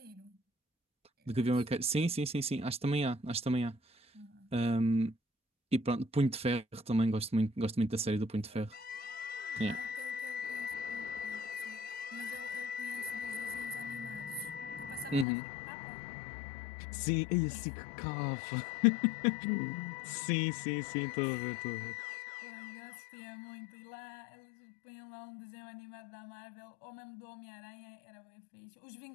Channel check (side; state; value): right; drops out; at 15.2 s